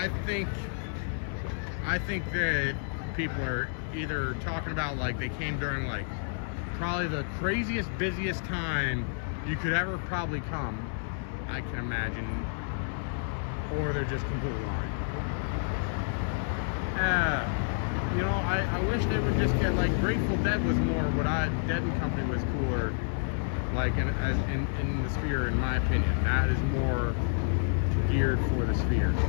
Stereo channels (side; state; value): right; silent; digital silence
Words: think that people are either talking about like they came during like probably the craziest, busiest time you could ever probably come, I can imagine, or they're just completely lying. You know, I wish they would just get like Grateful Dead was more what Dead and Company was cooler, like in the Sphere, in my opinion. That is more geared for the Sphere,